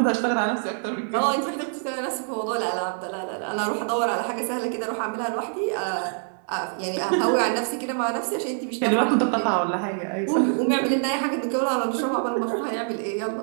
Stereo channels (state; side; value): silent; left; digital silence